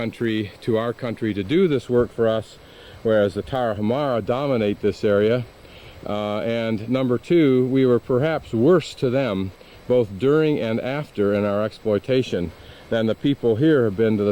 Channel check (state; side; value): identical; both; correlation 1.00